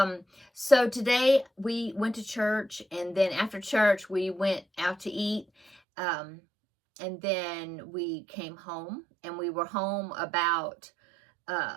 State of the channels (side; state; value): left; drops out; at 5.8 s